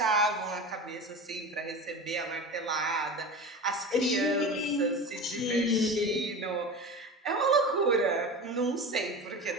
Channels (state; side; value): normal; both; correlation 0.30